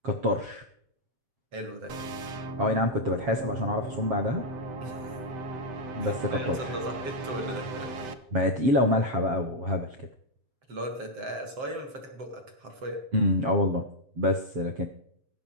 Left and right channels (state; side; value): late; left; 7.6 ms